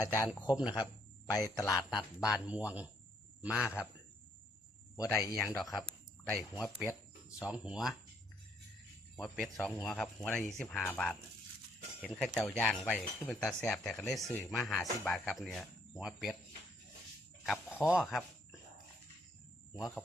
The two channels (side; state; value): both; normal; correlation 0.69